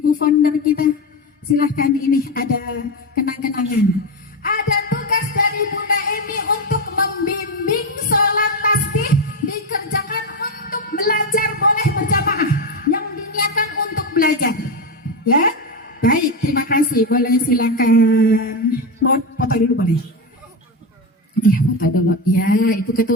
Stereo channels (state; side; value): normal; both; correlation 0.14